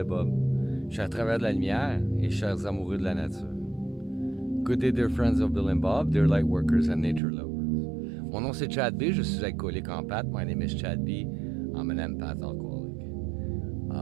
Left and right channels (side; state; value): left; drops out; at 7.2 s